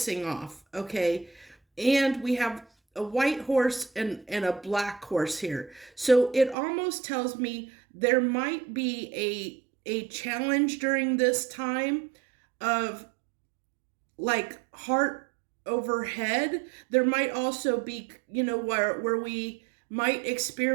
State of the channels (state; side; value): drops out; left; at 6.6 s